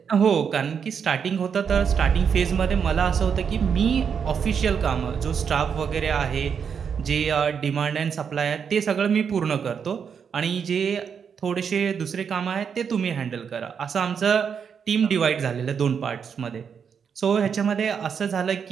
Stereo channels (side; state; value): left; quieter; 6.9 dB